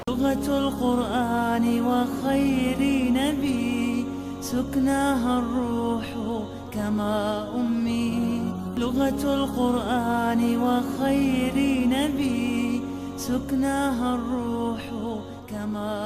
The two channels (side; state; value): both; identical; correlation 1.00